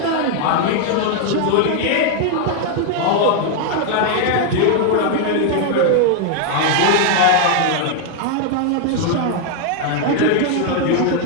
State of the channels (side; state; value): both; different; correlation 0.00